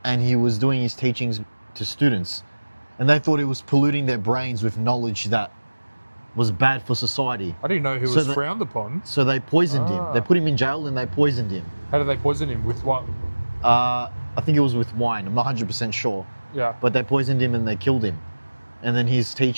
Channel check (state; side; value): inverted; both; correlation -1.00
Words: he was doing his teachings to students, and they thought he was polluting their brains with knowledge that was bad for society. I didn't know he was frowned upon. So they poisoned him. They put him in jail and they poisoned him. How did they poison him? With what? I think it was with wine. I'm not 100% sure. Yeah. But they poisoned him and they killed him. And then his